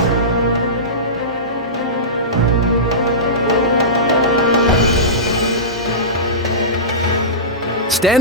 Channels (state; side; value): normal; both; correlation -0.20